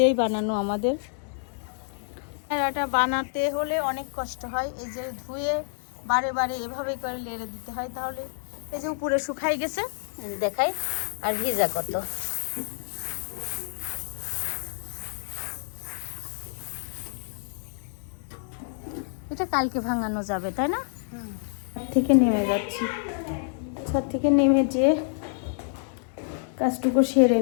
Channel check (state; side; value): silent; right; digital silence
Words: বানানো আমাদের। এটা বানাতে হলে অনেক কষ্ট হয়, এই যে ধুয়ে বারে বারে এভাবে করে লেড়ে দিতে হয়, তাহলে এই যে উপরে শুকাই গেছে দেখাই, আর ভিজা কত। এটা কালকে ভাঙানো যাবে, তাই না? ছাদ থেকে নেমে যাচ্ছি, ছাদ থেকে নেমে যেয়ে কাজটুকু সেরে